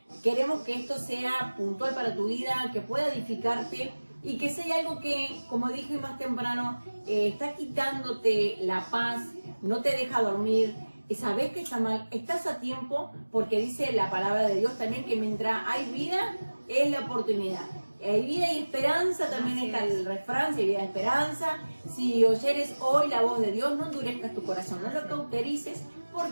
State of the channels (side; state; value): both; inverted; correlation -1.00